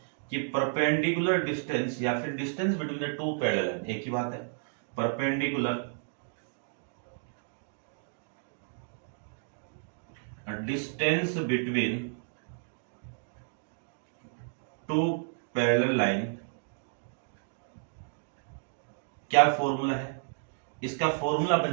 कि परपेंडिकुलर डिस्टेंस या फिर distance between the two parallel line, एक ही बात है। Perpendicular distance between two parallel line, क्या फॉर्मूला है इसका? फॉर्मूला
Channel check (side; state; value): left; silent; digital silence